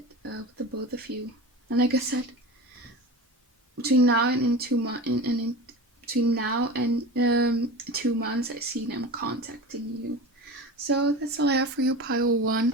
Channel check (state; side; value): normal; both; correlation 0.30